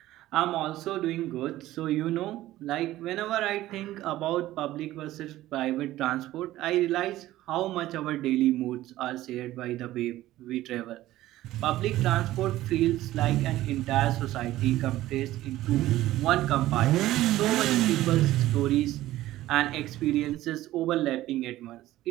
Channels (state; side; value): quieter; left; 15.4 dB